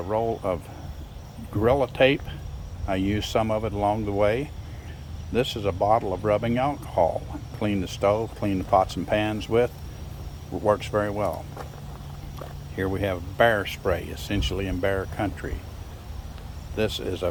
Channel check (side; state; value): both; identical; correlation 1.00